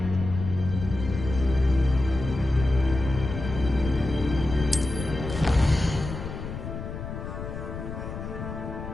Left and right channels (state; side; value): noise; left; rumble, 8 dB below the sound